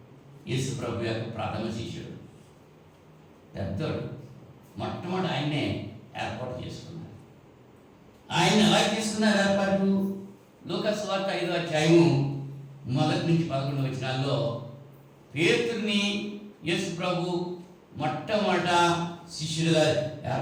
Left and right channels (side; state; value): both; identical; correlation 1.00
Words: యేసు ప్రభు యొక్క ప్రథమ శిష్యుడు, పెద్దోడు. మొట్టమొదటి ఆయన్నే ఏర్పాటు చేసుకున్నారు. ఆయన ఎలా తీసుకున్నారు ఏర్పాటు? లూకాసు వార్త 5వ అధ్యాయము 1 నుంచి 11 వచనాల్లో పేతురుని యేసు ప్రభు మొట్టమొదట శిష్యులుగా